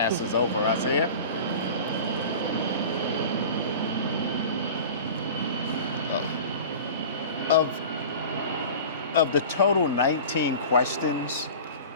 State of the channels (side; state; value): both; inverted; correlation -0.37